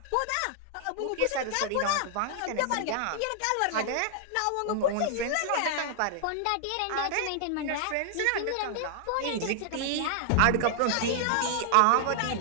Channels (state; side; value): different; both; correlation -0.01